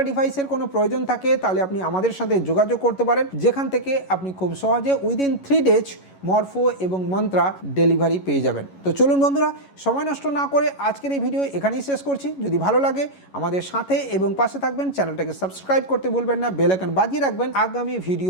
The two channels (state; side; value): late; right; 11 ms